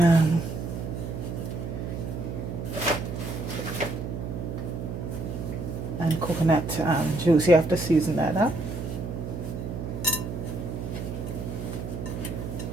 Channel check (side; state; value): right; noise; hum, 6 dB below the sound